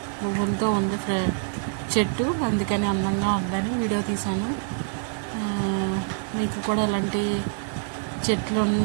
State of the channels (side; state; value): left; silent; 61 dB below the other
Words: పువ్వులతో ఉంది చెట్టు, అందుకని అందంగా ఉందని వీడియో తీశాను. మీకు కూడా ఇలాంటి చెట్లు